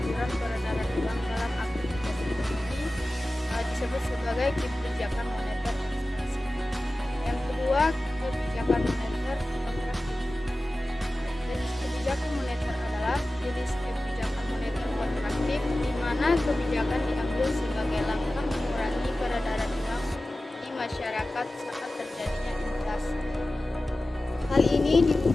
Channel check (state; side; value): normal; both; correlation 0.96